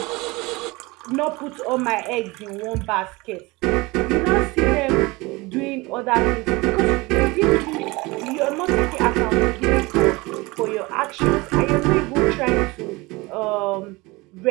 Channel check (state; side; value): quieter; left; 23.3 dB